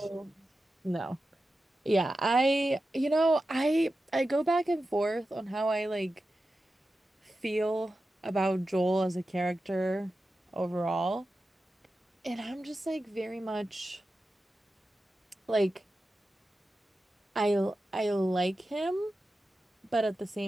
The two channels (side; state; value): both; normal; correlation 0.92